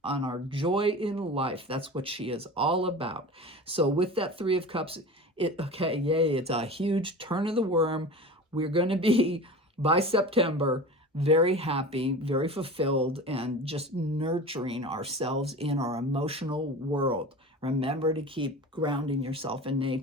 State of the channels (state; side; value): normal; both; correlation 0.33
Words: our joy in life. That's what she is all about. So with that Three of Cups, it's a huge turn of the worm. We're going to be, by September, very happy, very fulfilled, and just nurturing ourselves in our emotional world. Remember to keep grounding yourself in